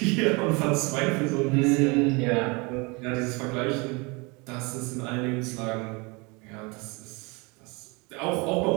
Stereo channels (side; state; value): left; quieter; 28.2 dB